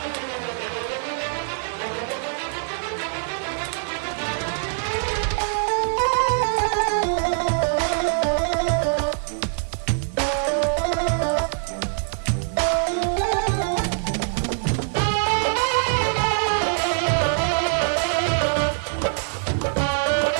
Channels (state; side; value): silent; left; digital silence